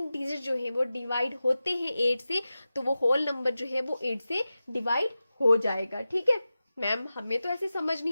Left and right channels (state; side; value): inverted; both; correlation -0.94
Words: डिजिट जो है वो डिवाइड होते हैं 8 से तो वो होल नंबर जो है वो 8 से डिवाइड हो जाएगा। ठीक है मैम, हमें तो ऐसे समझ